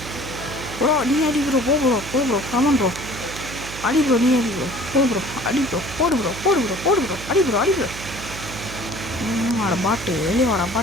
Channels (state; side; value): noise; right; hum, 11 dB below the sound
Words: ப்ரோ. நீ அடி ப்ரோ போ ப்ரோ ஆமாம் ப்ரோ அடி ப்ரோ. நீ அடி ப்ரோ போ ப்ரோ அடி ப்ரோ போடு ப்ரோ அடி ப்ரோ வாடா பாட்டு வெளியே வாடா